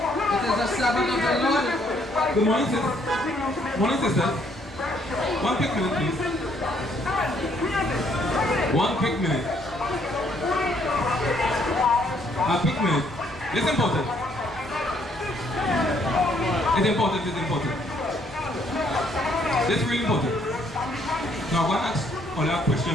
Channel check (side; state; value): both; normal; correlation 0.68